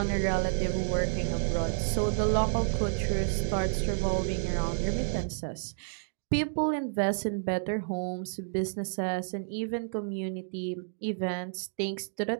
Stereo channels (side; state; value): left; silent; digital silence